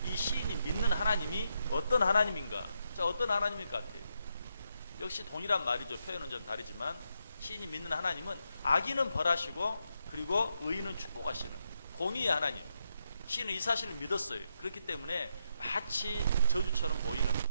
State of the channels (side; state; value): both; inverted; correlation -0.80